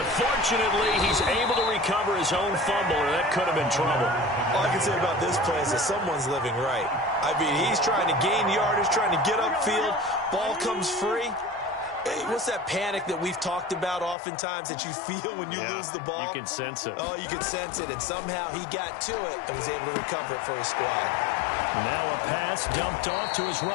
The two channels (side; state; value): right; drops out; at 14.2 s